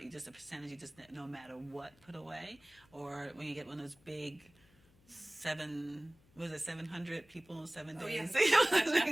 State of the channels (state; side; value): noise; left; hum, 29 dB below the sound